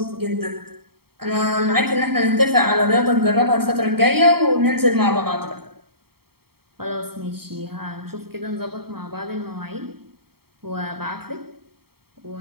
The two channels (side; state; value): left; late; 0.95 ms